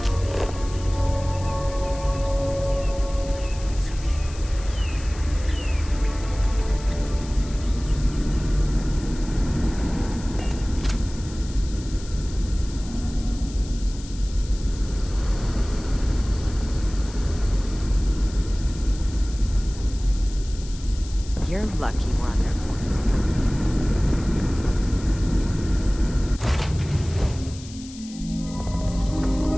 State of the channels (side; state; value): left; noise; hiss, 17 dB below the sound